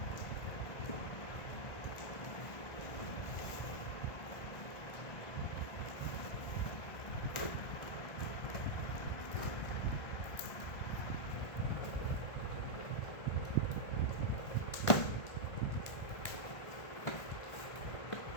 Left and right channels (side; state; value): right; late; 1.5 ms